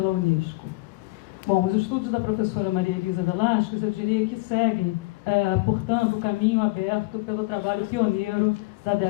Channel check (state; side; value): quieter; right; 23.3 dB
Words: Unesco. Bom, os estudos da professora Maria Elisa Velasquez, eu diria que seguem, portanto, o caminho aberto pelo trabalho pioneiro da